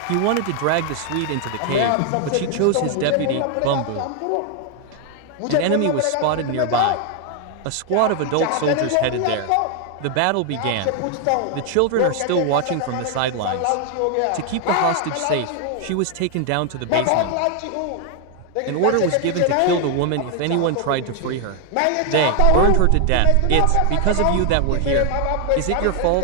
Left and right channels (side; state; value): both; different; correlation 0.00